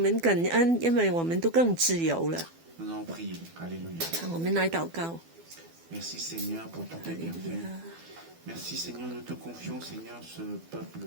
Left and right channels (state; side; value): late; left; 12 ms